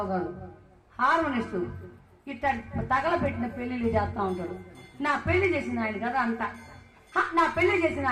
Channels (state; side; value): identical; both; correlation 1.00